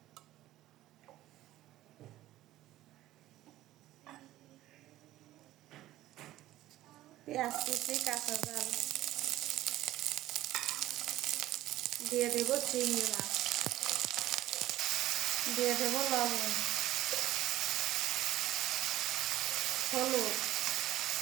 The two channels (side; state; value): left; quieter; 15.0 dB